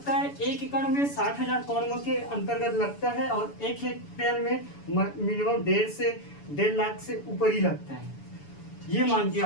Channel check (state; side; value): late; right; 7.0 ms